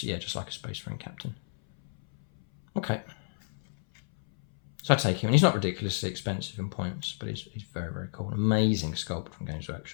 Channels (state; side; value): silent; right; 57 dB below the other